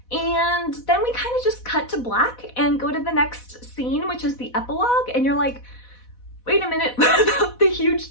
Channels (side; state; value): right; late; 4.1 ms